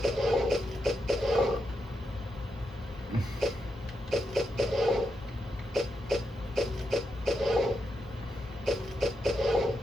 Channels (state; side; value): normal; both; correlation 0.84